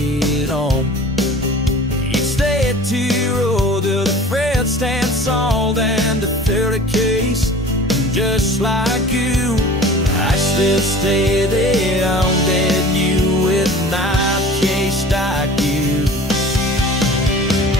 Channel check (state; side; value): normal; both; correlation 0.42